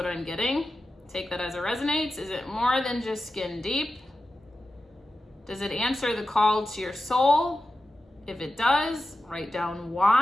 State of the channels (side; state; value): both; normal; correlation 0.92